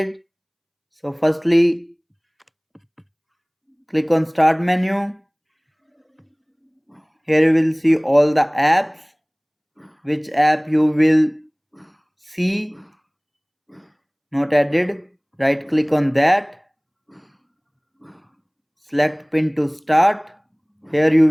So firstly, click on start menu. Here you will see all the apps. Which app you will see not added. Right click on that. Select pin to start. Here you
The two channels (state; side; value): identical; both; correlation 1.00